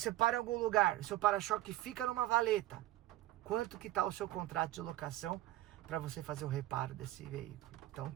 para em algum lugar, o seu para-choque fica numa valeta. Quanto que tá o seu contrato de locação para você fazer o reparo desse veículo? Então,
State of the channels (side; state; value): left; quieter; 15.7 dB